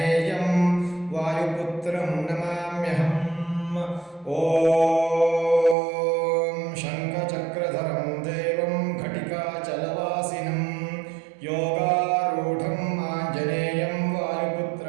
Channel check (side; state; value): left; drops out; at 5.8 s